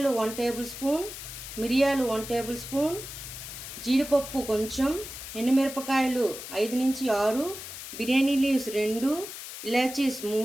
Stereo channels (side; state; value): left; noise; hiss, 10 dB below the sound